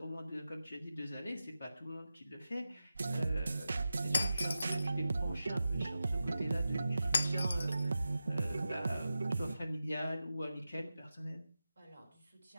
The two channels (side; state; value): both; inverted; correlation -0.92